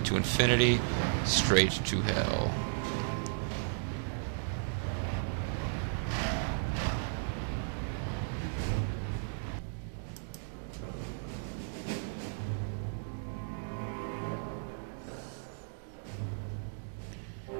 infinity, straight to hell.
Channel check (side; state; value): left; silent; digital silence